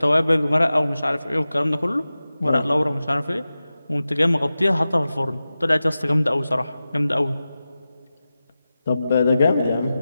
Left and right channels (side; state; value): both; inverted; correlation -0.94